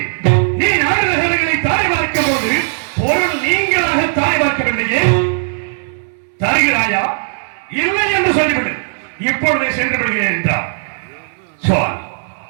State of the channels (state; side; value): silent; left; 69 dB below the other